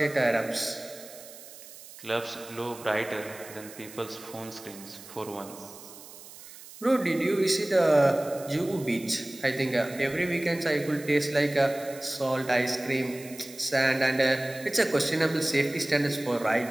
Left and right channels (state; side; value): noise; right; hiss, 17 dB below the sound